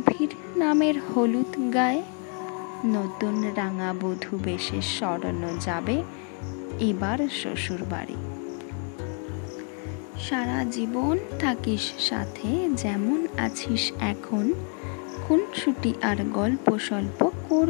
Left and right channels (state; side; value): quieter; right; 40.0 dB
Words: নামের হলুদ গায়ে, নতুন রাঙা বধূ বেশে সরানো যাবে এবার শ্বশুর বাড়ি। সারা জীবন থাকিস সাথে যেমন আছিস এখন, খুনসুটি আর গল্প স্বল্প